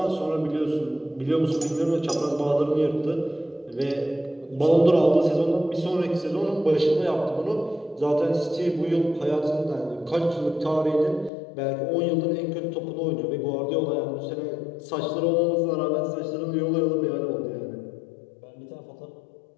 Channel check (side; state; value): right; drops out; at 11.3 s